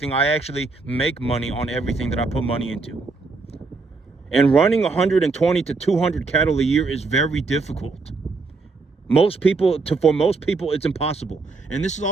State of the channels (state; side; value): quieter; left; 3.9 dB